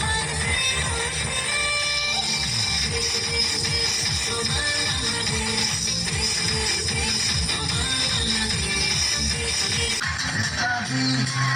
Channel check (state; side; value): identical; both; correlation 1.00